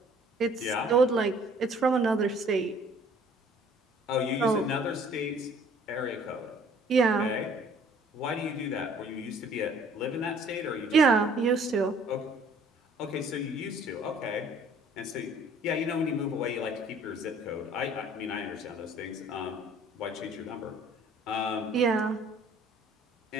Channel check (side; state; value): both; normal; correlation 0.56